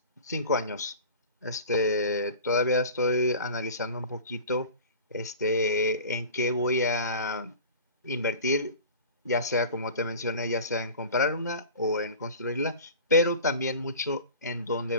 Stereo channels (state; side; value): inverted; both; correlation -0.38